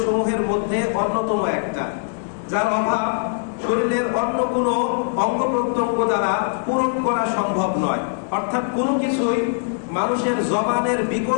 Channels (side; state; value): right; silent; digital silence